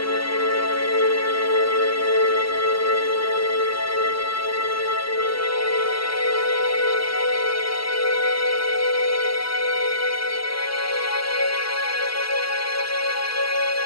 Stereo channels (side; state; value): right; late; 0.73 ms